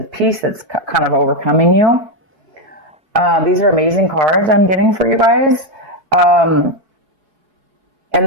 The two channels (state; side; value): late; left; 4.6 ms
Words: peace that's kind of overcoming you. These are amazing cards I'm getting for you guys. And